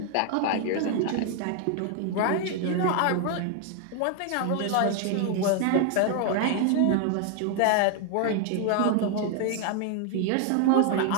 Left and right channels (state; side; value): different; both; correlation 0.00